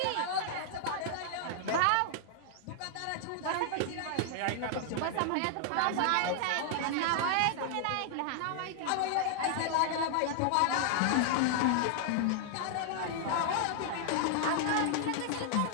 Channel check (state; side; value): different; both; correlation -0.01